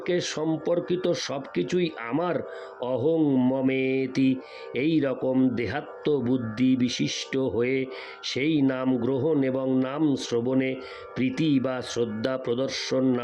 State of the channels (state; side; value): identical; both; correlation 1.00